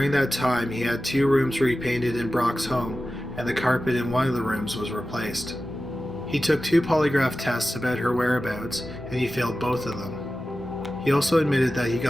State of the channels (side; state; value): both; normal; correlation 0.94